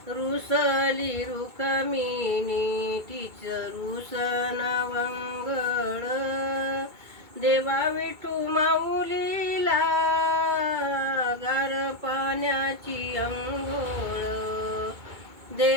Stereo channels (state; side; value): late; left; 2.2 ms